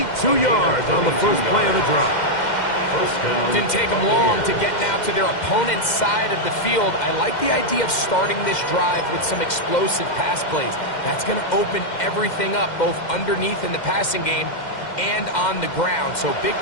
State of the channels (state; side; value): late; right; 2.1 ms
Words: yards on the first play of the drive. First down. Didn't take them long to get now to their opponent's side of the field. I like the idea of starting this drive with some explosive pass plays. That's going to open everything up, both underneath in the passing game and on the ground. So big